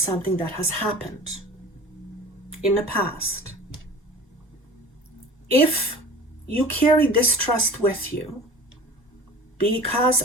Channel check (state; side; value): normal; both; correlation 0.41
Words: that has happened in the past. If you carry distrust with you because